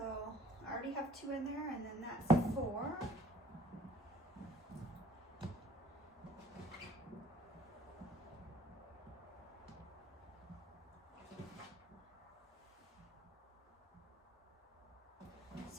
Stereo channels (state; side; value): normal; both; correlation 0.54